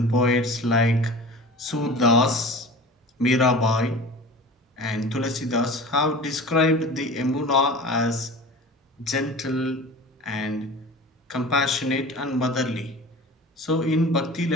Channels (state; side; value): normal; both; correlation 0.37